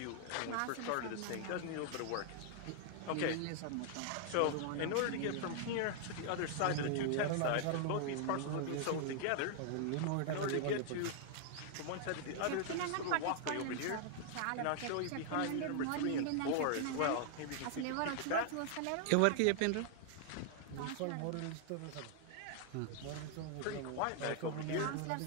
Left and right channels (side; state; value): both; different; correlation 0.00